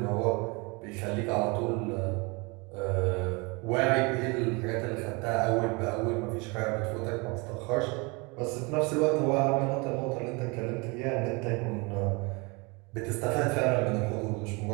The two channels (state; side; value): quieter; left; 28.5 dB